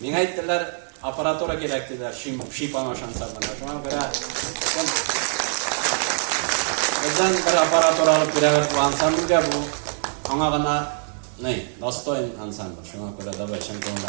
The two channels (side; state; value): left; silent; digital silence